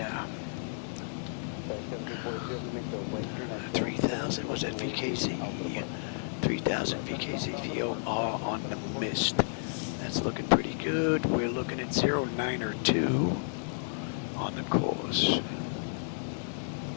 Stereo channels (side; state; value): right; silent; digital silence